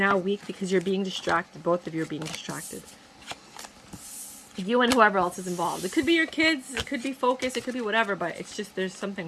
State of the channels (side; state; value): both; identical; correlation 1.00